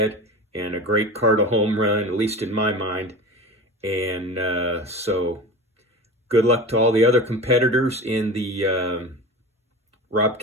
and a great Cardinal home run, at least in my mind. And so good luck to all the other competitors in the Rob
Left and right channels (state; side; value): normal; both; correlation 0.32